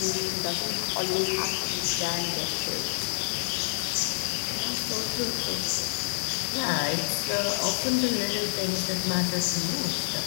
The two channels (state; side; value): silent; right; digital silence